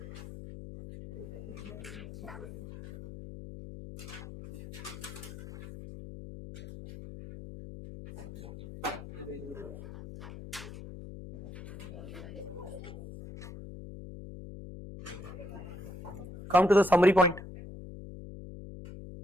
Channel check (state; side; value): noise; left; hum, 12 dB below the sound